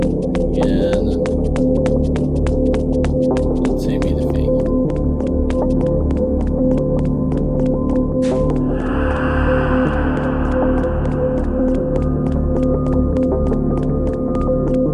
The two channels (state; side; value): identical; both; correlation 1.00